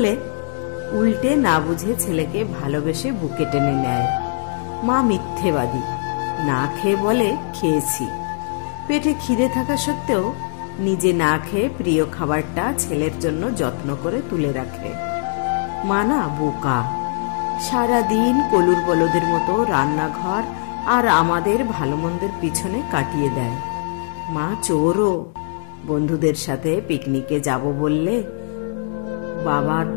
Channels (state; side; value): silent; right; digital silence